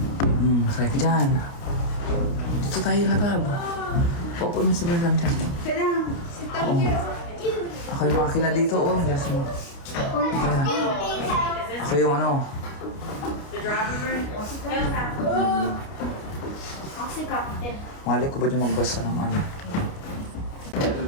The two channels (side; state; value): right; late; 29 ms